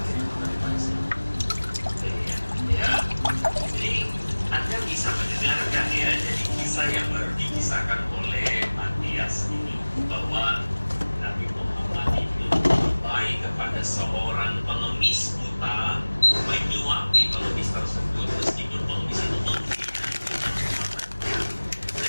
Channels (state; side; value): inverted; both; correlation -1.00